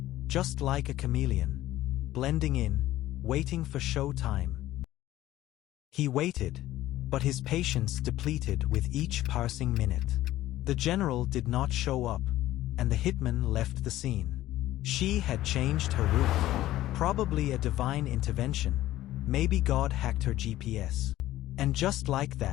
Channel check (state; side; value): quieter; right; 14.9 dB